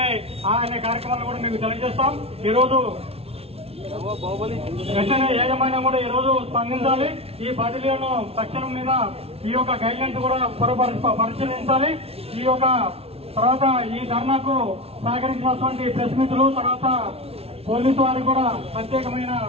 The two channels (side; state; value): left; late; 0.29 ms